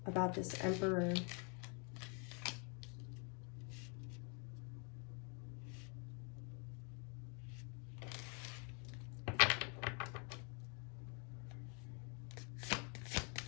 about this Emperor.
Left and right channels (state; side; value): quieter; right; 36.2 dB